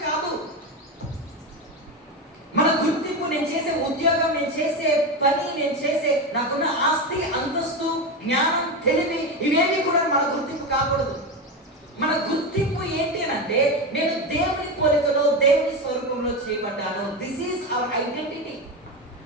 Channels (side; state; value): both; normal; correlation 0.16